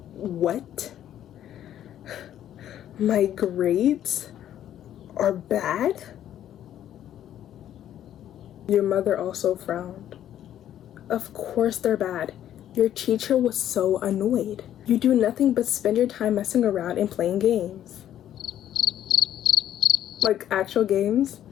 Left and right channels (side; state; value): right; quieter; 11.2 dB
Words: What? My grades are bad? Your mother also frowned. Of course they're bad. Your teacher was so annoyed. You do nothing but spend your time messing around and playing games. Like actual games?